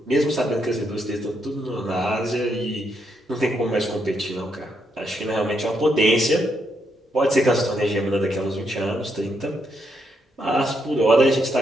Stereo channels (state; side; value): normal; both; correlation 0.78